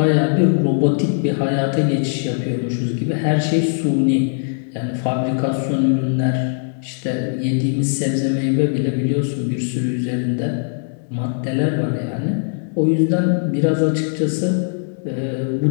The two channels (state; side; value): silent; right; digital silence